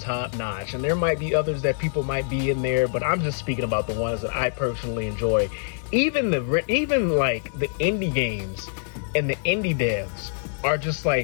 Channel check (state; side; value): silent; right; digital silence